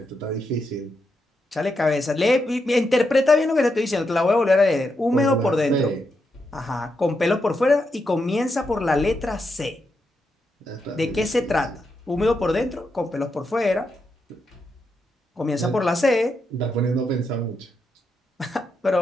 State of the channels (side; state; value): both; normal; correlation 0.83